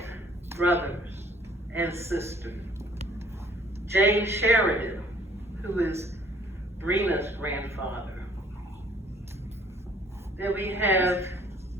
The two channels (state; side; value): normal; both; correlation 0.58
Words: brothers and sisters. James Sheridan, who is Brena's grandfather. Then we have